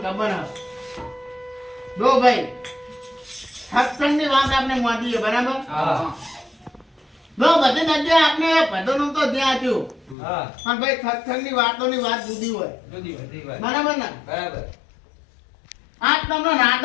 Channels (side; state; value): right; drops out; at 10.2 s